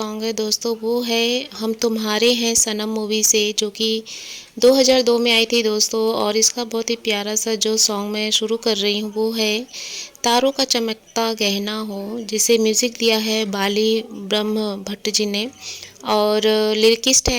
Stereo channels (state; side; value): identical; both; correlation 1.00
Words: है दोस्तों, वो है हम तुम्हारे हैं सनम मूवी से, जो कि 2002 में आई थी दोस्तों। और इसका बहुत ही प्यारा सा जो सॉन्ग मैं शुरू कर रही हूँ वो है तारों का चमकता गहना हो, जिसे म्यूज़िक दिया है बाली ब्रह्म भट्ट जी ने। और लिरिकिस्ट